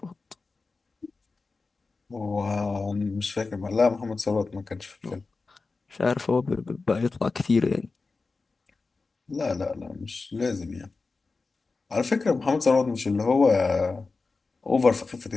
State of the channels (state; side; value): quieter; right; 4.0 dB